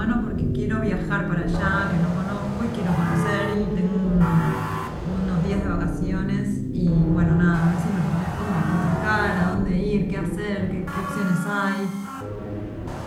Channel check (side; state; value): both; identical; correlation 1.00